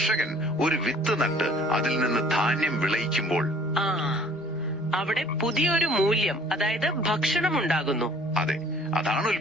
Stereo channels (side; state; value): both; normal; correlation 0.54